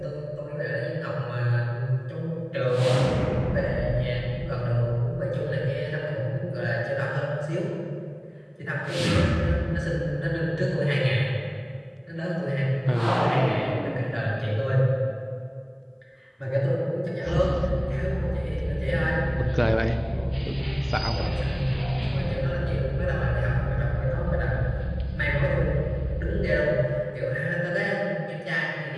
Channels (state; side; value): identical; both; correlation 1.00